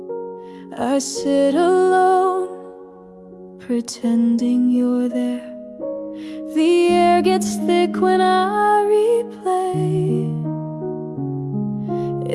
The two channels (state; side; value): identical; both; correlation 1.00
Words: I sit alone, pretending you're there. The air gets thick when I replay.